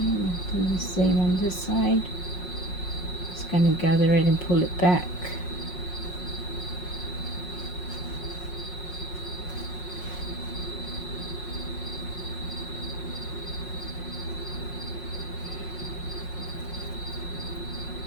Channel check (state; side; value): late; right; 5.5 ms